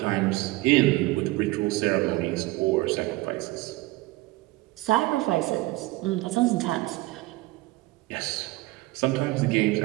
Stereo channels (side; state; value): left; quieter; 20.3 dB